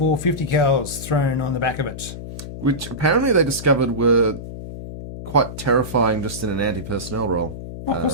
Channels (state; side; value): noise; left; hum, 10 dB below the sound